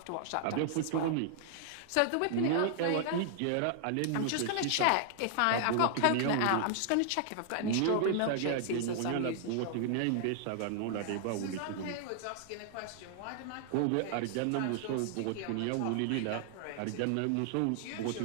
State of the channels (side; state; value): both; different; correlation -0.01